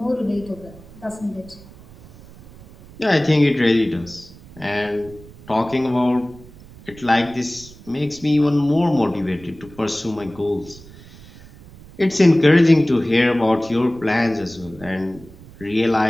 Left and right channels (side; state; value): right; noise; rumble, 21 dB below the sound